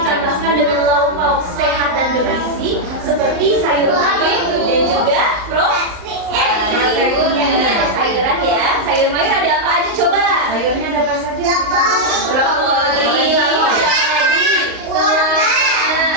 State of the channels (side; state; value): left; late; 38 ms